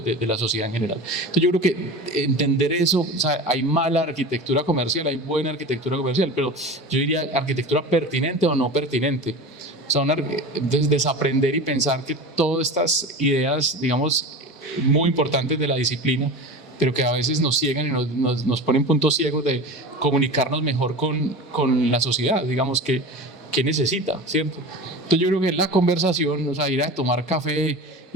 la sociedad en general. Entonces yo creo que entender eso, o sea, hay mala arquitectura comercial, hay buena arquitectura comercial, pero yo diría arquitectura pertinente o no pertinente. O sea, desaprender y pensar que todas estas ideas, digamos, muy importantes de la disciplina, pero que a veces nos ciegan y nos ponen puntos ciegos de comunicarnos mejor con la sociedad, digamos, que necesita, ¿cierto? Entonces yo creo que la conversación, o sea, ir a tomar café,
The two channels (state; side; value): normal; both; correlation 0.31